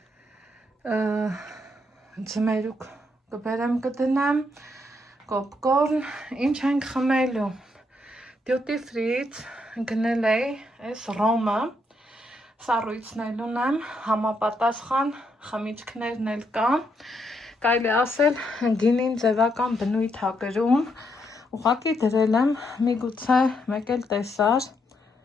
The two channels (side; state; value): both; normal; correlation 0.77